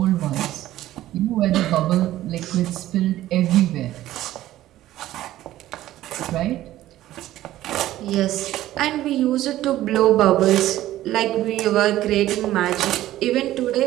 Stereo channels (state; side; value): quieter; left; 14.4 dB